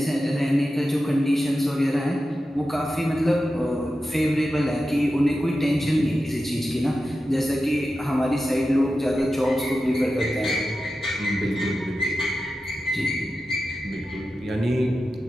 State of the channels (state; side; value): normal; both; correlation 0.92